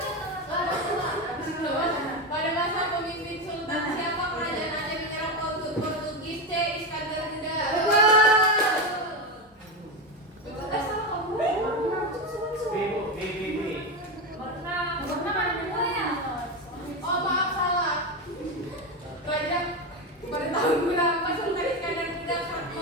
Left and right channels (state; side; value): normal; both; correlation 0.14